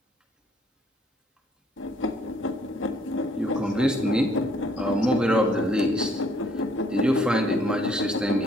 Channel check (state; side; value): normal; both; correlation 0.64